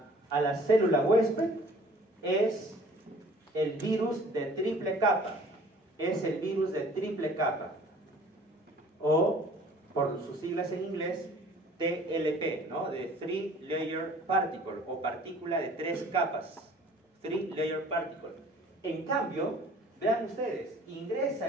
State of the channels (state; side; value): normal; both; correlation 0.51